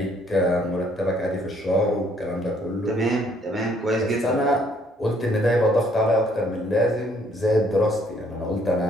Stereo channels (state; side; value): normal; both; correlation 0.65